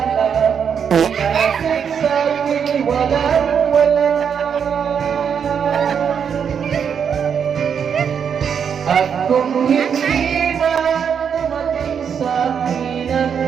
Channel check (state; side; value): quieter; left; 7.3 dB